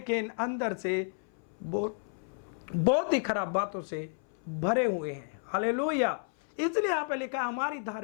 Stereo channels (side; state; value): right; silent; 57 dB below the other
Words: अंदर से बहुत ही खराब बातों से भरे हुए हैं। हालेलुया। इसलिए यहाँ पे लिखा, हमारी